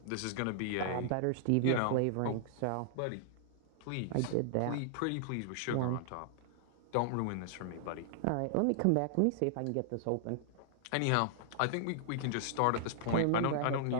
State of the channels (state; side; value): different; both; correlation -0.01